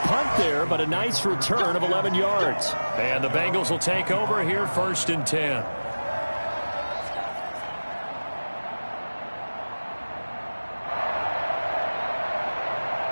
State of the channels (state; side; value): inverted; both; correlation -1.00